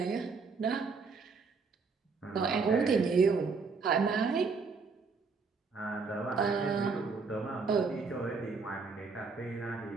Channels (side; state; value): left; quieter; 4.7 dB